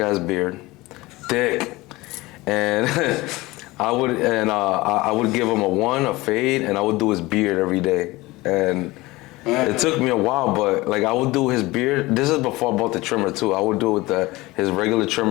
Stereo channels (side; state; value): right; quieter; 20.6 dB